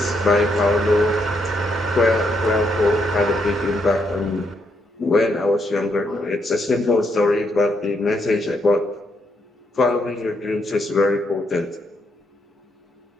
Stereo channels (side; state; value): both; normal; correlation 0.77